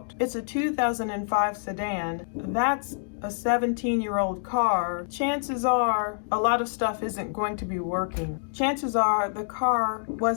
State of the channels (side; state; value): right; silent; digital silence